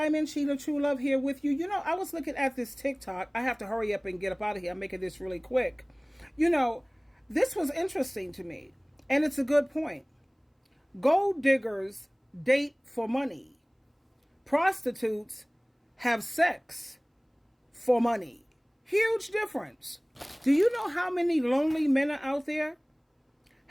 SheilaTruelove here with you. You know, I was looking at this TikTok. I have to hurry up and get up out of here. I'm making this really quick. You know, this was interesting to me, and it's a good point. Gold diggers date for money. Prostitutes have sex for money. Huge difference. Do you know how many lonely men are out there?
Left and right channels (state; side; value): identical; both; correlation 1.00